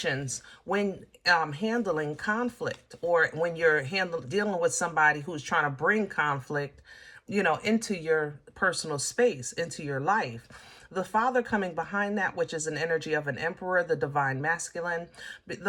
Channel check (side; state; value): both; identical; correlation 1.00